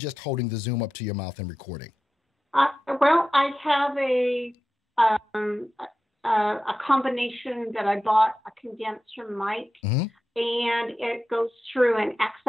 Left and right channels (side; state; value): both; normal; correlation 0.92